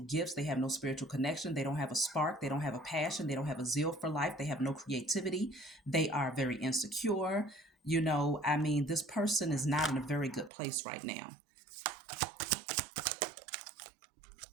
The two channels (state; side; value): drops out; left; at 10.5 s